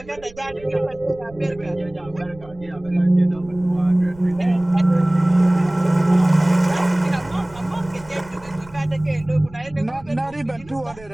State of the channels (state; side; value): noise; right; rumble, 22 dB below the sound